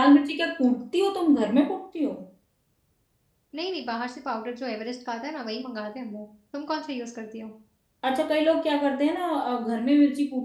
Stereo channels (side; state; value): both; identical; correlation 1.00